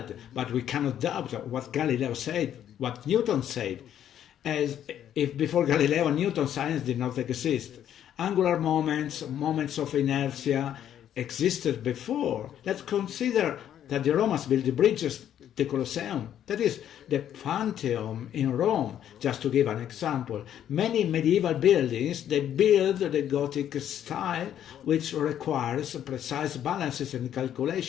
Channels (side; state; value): right; quieter; 10.4 dB